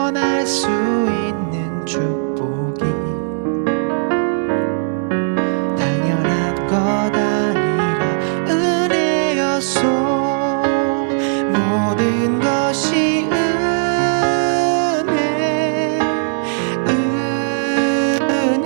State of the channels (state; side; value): silent; left; digital silence